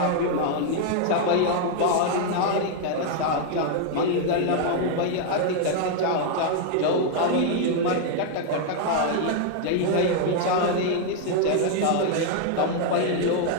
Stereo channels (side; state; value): both; different; correlation 0.00